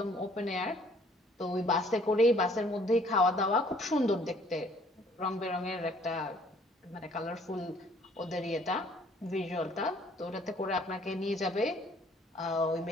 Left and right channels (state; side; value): normal; both; correlation 0.60